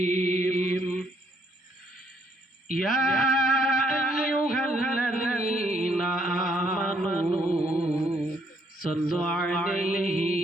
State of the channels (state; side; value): normal; both; correlation 0.69